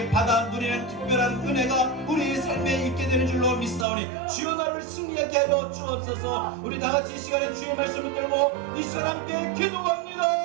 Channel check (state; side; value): drops out; left; at 3.9 s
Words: 받아 누리는 특별한 은혜가 우리의 삶에 있게 되는 줄로 믿사오니 주여 나를 승리하게 하여 주옵소서. 우리 다같이 이 시간에 주의 말씀을 들고 이 시간 함께 기도합니다.